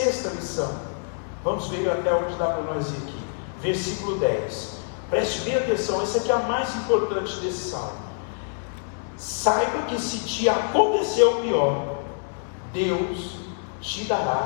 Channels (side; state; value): right; silent; digital silence